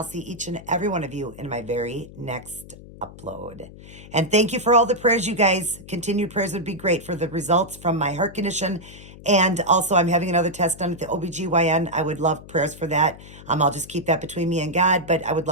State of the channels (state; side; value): noise; left; hum, 18 dB below the sound